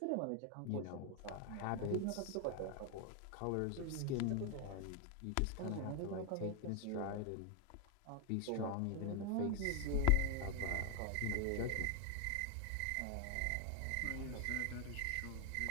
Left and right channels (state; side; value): different; both; correlation 0.01